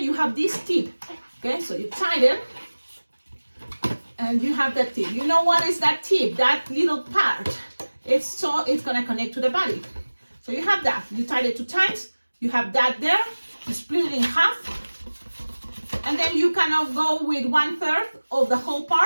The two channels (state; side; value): inverted; both; correlation -1.00